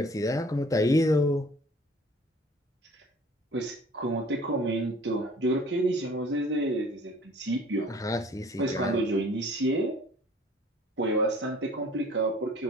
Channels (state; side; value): normal; both; correlation 0.51